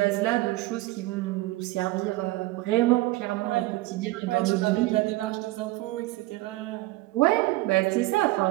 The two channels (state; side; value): quieter; left; 18.9 dB